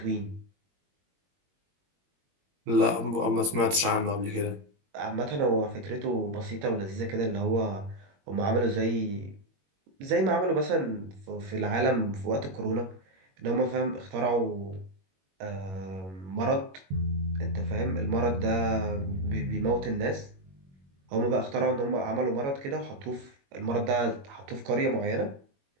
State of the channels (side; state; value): left; late; 21 ms